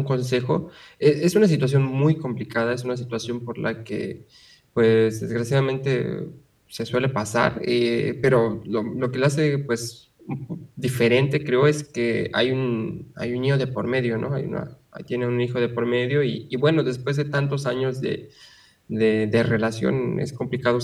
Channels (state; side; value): identical; both; correlation 1.00